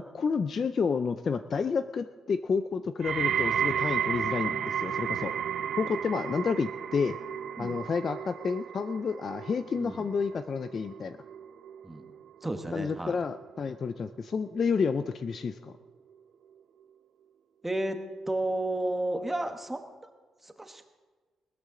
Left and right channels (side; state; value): both; normal; correlation 0.80